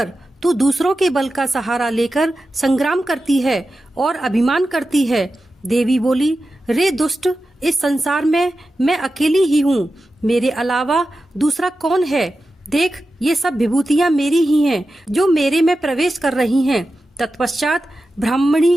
तू दूसरों के बल का सहारा लेकर संग्राम करती है और अभिमान करती है। देवी बोली, रे दुष्ट, इस संसार में मैं अकेली ही हूँ, मेरे अलावा दूसरा कौन है? देख, ये सब विभूतियां मेरी ही हैं, जो मेरे में प्रवेश कर रही हैं। तत्पश्चात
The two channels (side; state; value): both; normal; correlation 0.92